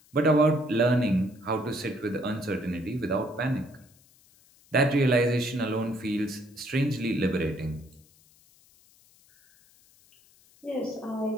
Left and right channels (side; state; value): left; noise; hiss, 29 dB below the sound